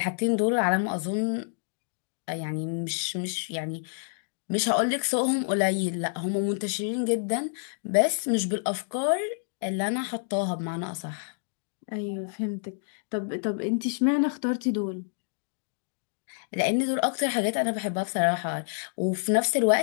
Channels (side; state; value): right; silent; digital silence